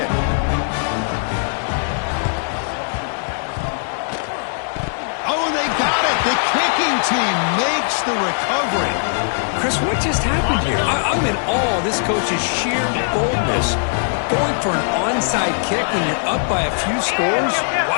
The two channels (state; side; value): silent; right; digital silence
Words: Oh, they got it. The kicking team makes the recovery. Chris, what just happened here? I'm in awe of this coach's sheer boldness. Going for an onside kick when you're up by a few scores?